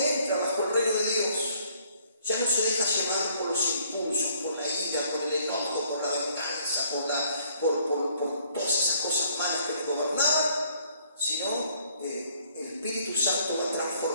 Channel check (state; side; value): inverted; both; correlation -0.63